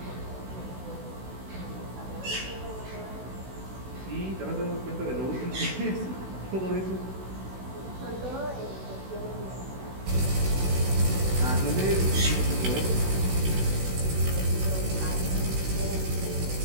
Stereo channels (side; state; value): left; late; 16 ms